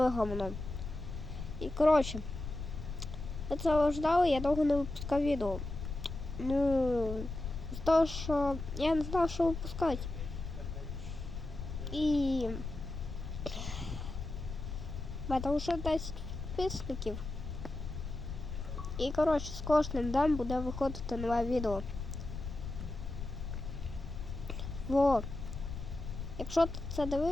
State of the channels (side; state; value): left; noise; rumble, 7 dB below the sound